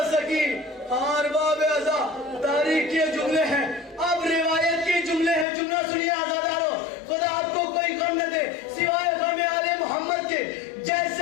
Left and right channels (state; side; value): drops out; right; at 5.5 s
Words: سکی. اور باب ازا تاریخ کے جملے ہیں. اب روایت کے جملے ہیں, جملہ سنیے عزاداروں, خدا آپ کو کوئی غم نہ دے سوائے غم آل محمد کے.